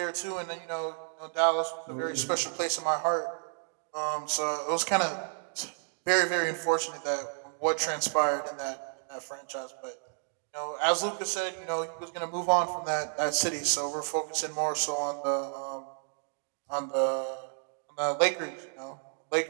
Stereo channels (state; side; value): silent; left; digital silence